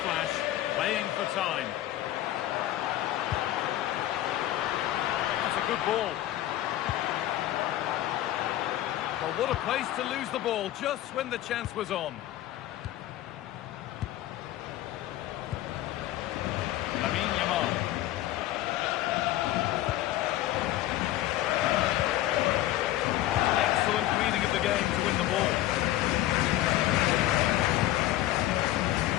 flash. Playing for time. That's a good ball. Well, what a place to lose the ball just when the chance was on. Lamine Yamal. Reading of the game to win the ball.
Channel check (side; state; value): right; quieter; 14.5 dB